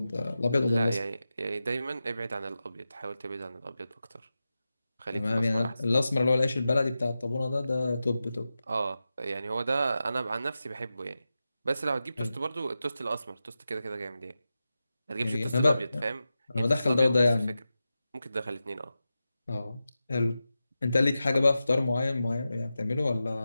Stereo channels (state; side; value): inverted; both; correlation -0.92